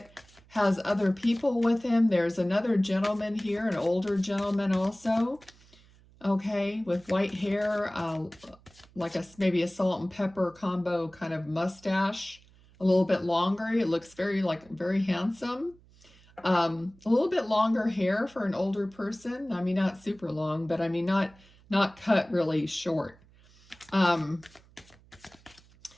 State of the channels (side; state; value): right; noise; hum, 27 dB below the sound